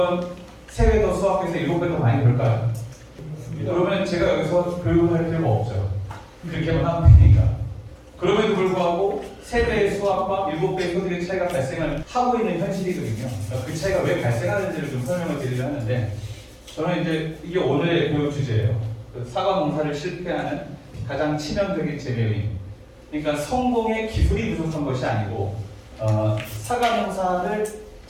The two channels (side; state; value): both; identical; correlation 1.00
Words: 3배 더 수확해서 7배 더 많이 벌까요? 그러면 제가 여기서 교육을 할 필요가 없죠. 그렇게만 하면 되니까. 그럼에도 불구하고 3배의 수확과 7배의 소득의 차이가 발생을 하고 있는 현실이거든요. 그러니까 그 차이가 왜 발생하는지를 좀 설명을 드리려 하는데 저는 이제 이게 오늘의 교육 주제예요. 사과 농사를 실패하는 가장 치명적인 재배 요인. 그러니까 성공의 기술이 부족한 것이 아니고 사과 농사를